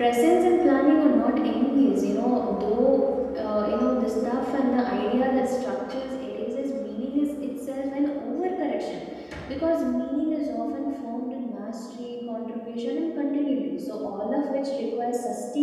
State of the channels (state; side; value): identical; both; correlation 1.00